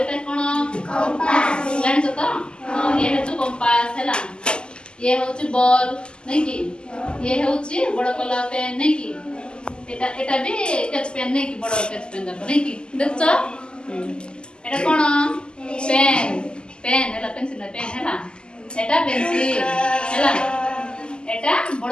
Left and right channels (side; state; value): right; late; 0.048 ms